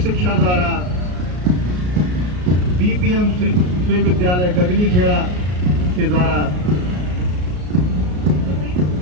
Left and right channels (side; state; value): left; late; 33 ms